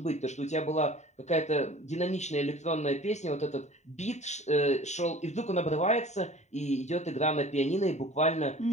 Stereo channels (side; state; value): right; late; 0.34 ms